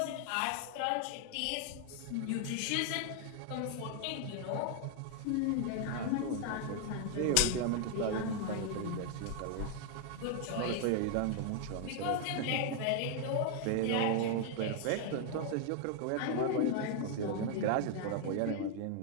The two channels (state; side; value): different; both; correlation 0.00